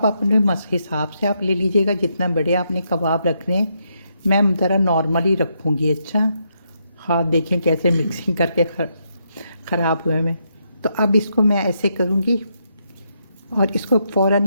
अपने हिसाब से आप ले लीजिएगा, जितना बड़े आपने कबाब रखने हैं। मैं ज़रा नॉर्मली रखूँगी। अच्छा, हाथ देखें कैसे मिक्सिंग करके ख़राब हुए में। तो अब इसको मैं ऐसे करूँगी, और इसको फ़ौरन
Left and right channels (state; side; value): inverted; both; correlation -0.79